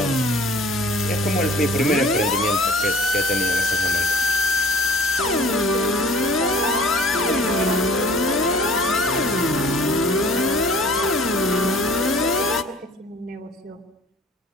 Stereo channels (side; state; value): both; normal; correlation 0.50